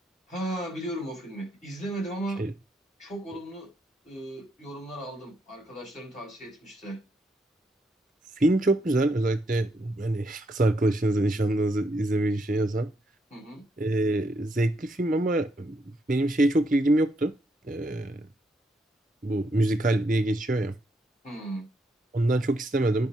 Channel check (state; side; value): normal; both; correlation 0.77